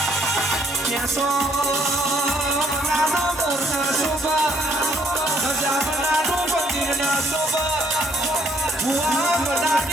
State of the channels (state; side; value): normal; both; correlation 0.67